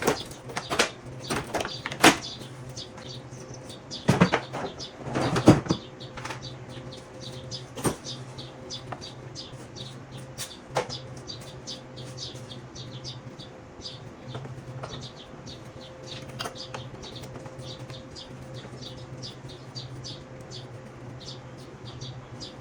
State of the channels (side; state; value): both; identical; correlation 1.00